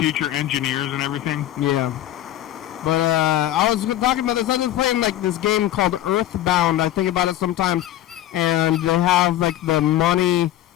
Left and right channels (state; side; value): quieter; right; 13.3 dB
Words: engineers and everything. Yeah. But I was talking about this. I was playing like this game called Earthbound. I think about it sometimes, and they have like the money